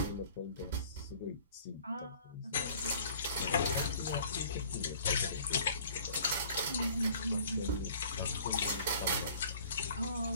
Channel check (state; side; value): inverted; both; correlation -0.52